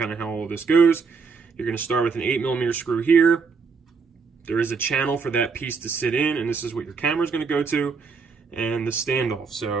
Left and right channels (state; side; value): quieter; left; 5.1 dB